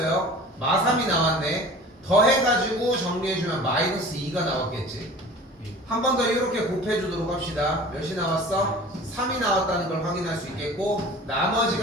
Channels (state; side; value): normal; both; correlation 0.42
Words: 마3이 나왔네. 더해가지고 정리해주면 마이너스 2가 나왔겠지. 한 번 더 이렇게 곱해주도록 합시다. 몇이 나왔어? 3이 나왔다는 걸 확인할 수 있겠고